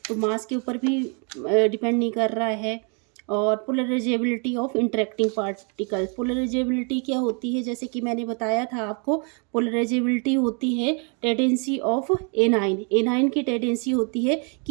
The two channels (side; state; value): left; quieter; 37.6 dB